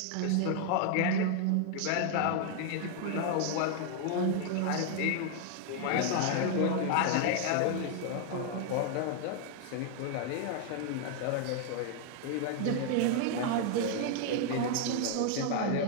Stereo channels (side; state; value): both; different; correlation 0.00